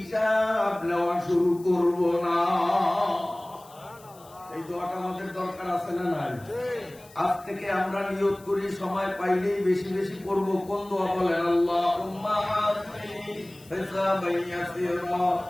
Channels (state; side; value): noise; left; hiss, 24 dB below the sound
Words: নেওয়া শুরু করব না। এই দোয়াটা আমাদের দরকার আছে না নাই? আজ থেকে আমরা নিয়ত করি, সময় পাইলেই বেশি বেশি পড়ব। কোন দোয়া বলেন? আল্লাহুম্মা হাসিবনি হিসাবান ইয়াসীরা,